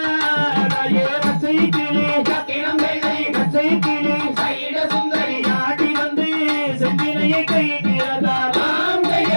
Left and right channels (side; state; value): both; inverted; correlation -1.00